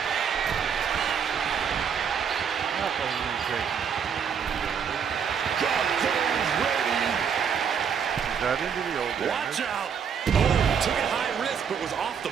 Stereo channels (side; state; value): left; quieter; 7.2 dB